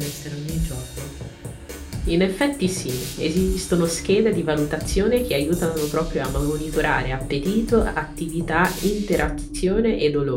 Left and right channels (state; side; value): identical; both; correlation 1.00